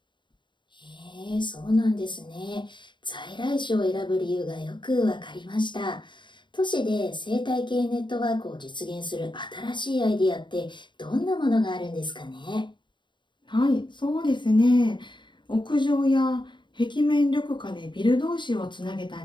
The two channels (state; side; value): late; right; 0.23 ms